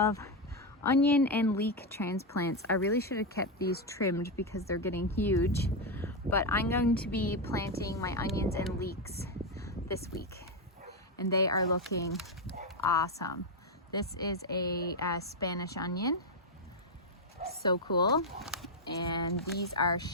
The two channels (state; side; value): normal; both; correlation 0.05